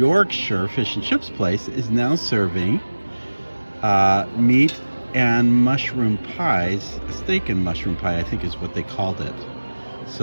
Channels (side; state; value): both; inverted; correlation -1.00